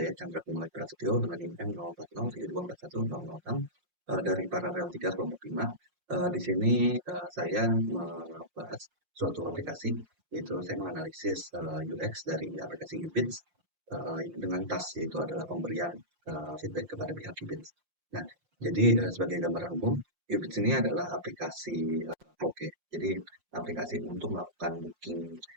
Chandra Kumala Prasetyo dengan NIM 04072410006 dari Paralel 3 kelompok 5. Di sini saya membahas suatu aplikasi, yaitu saya menganalisis UX dari aplikasi Ubits dengan task yaitu adalah pemberian feedback kepada pihak Ubits. Nah, jadi sebagai gambaran umum, Ubits ini adalah aplikasi karaoke. Jadi aplikasi untuk melakukan booking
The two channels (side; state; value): left; late; 5.6 ms